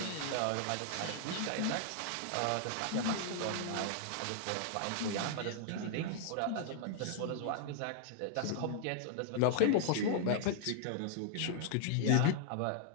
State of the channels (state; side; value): different; both; correlation -0.01